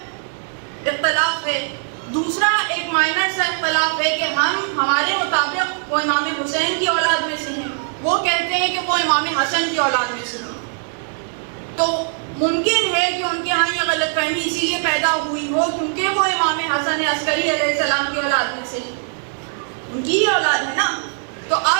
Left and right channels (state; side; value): silent; left; 65 dB below the other